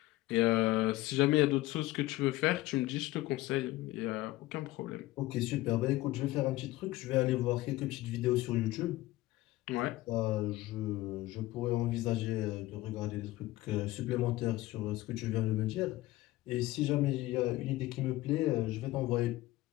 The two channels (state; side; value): quieter; right; 17.6 dB